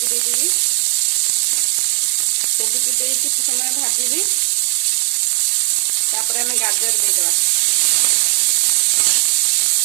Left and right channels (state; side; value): quieter; left; 31.8 dB